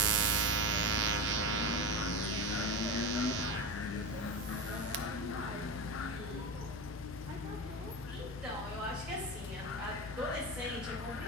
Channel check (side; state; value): both; normal; correlation 0.21